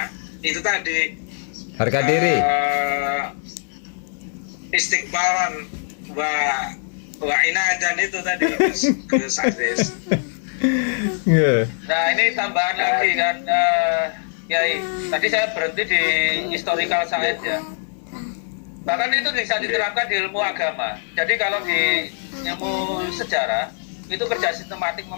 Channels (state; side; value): silent; right; 61 dB below the other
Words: itu tadi Harga diri. Istiqbalan wa inadan itu tadi Gus Aziz. Nah ini tambahan lagi kan, Kiai. Tadi saya berhenti di historical science ya. Bahkan itu bisa diterapkan di ilmu agama. Jadi kalau di ilmu sejarah itu kerja sistematik